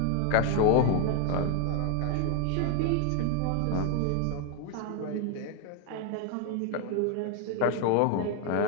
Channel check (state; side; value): different; both; correlation 0.01